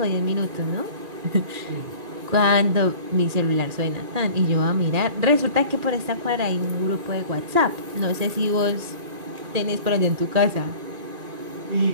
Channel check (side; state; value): left; late; 2.4 ms